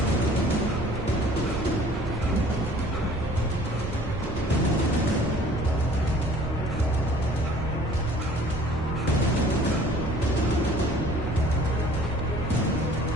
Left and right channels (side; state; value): right; noise; rumble, 12 dB below the sound